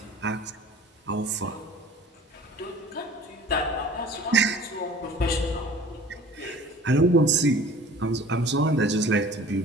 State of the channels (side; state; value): both; normal; correlation 0.46